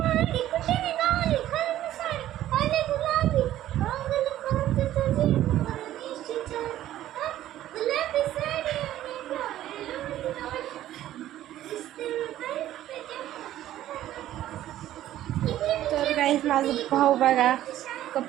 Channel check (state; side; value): quieter; left; 13.2 dB